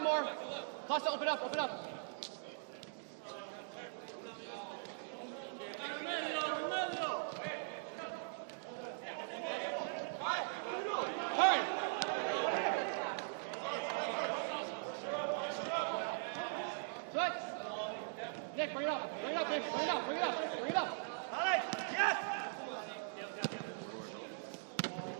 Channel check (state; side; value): silent; left; digital silence